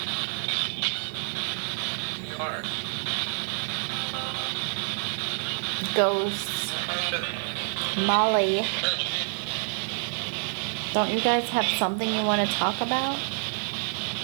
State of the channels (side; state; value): left; silent; digital silence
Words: Ghosts. Molly. Don't you guys have something you want to talk about?